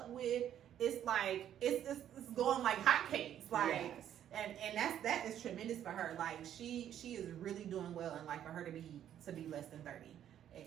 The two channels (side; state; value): left; quieter; 10.5 dB